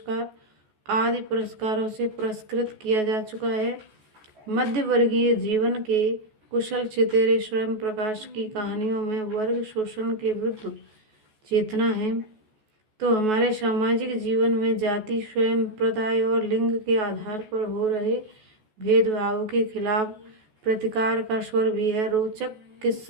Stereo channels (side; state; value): left; late; 14 ms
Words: आदि पुरस्कारों से पुरस्कृत किया जा चुका है। मध्य वर्गीय जीवन के कुशल चितेरे स्वयं प्रकाश की कहानियों में वर्ग शोषण के विरुद्ध चेतना है, तो हमारे सामाजिक जीवन में जाति, स्वयं प्रदाय और लिंग के आधार पर हो रहे भेदभाव के खिलाफ प्रतिकार का स्वर भी है। रोचक